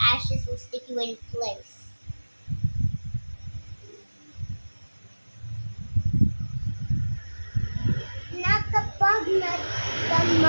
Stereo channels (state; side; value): inverted; both; correlation -1.00